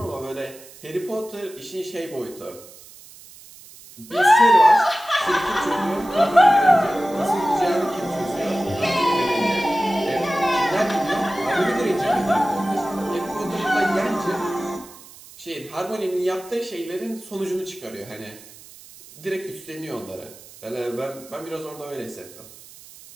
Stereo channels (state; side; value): noise; right; hiss, 20 dB below the sound